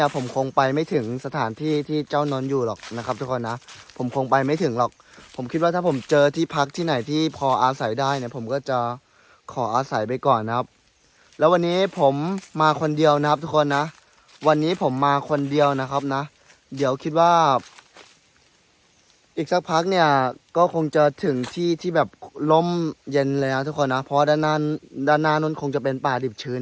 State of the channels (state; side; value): identical; both; correlation 1.00